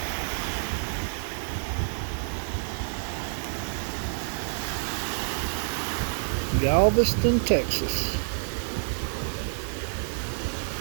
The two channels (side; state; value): left; silent; digital silence